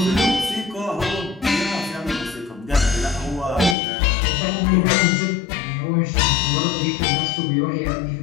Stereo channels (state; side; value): drops out; right; at 3.8 s